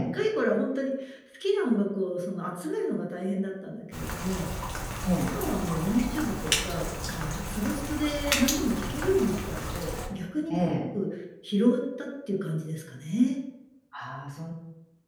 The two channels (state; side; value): identical; both; correlation 1.00